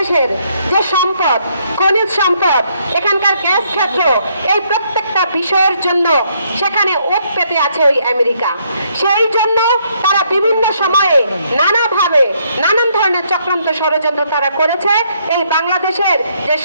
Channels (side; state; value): both; inverted; correlation -0.71